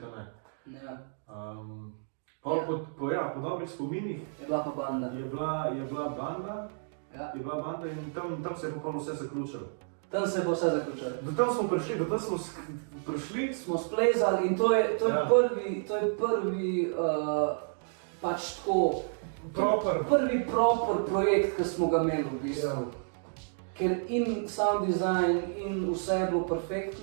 ne. Po dobrih spominih je bila pa banda. Je bila banda in tam se je popolno vse zaključilo. Tam se je pa vse zaključilo. Do tam smo prišli, smo splezali in to je prvi pač tako prvi proper projekt, ki smo ga imeli v bistvu. Ker in sound design in vse je bilo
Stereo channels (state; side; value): silent; left; digital silence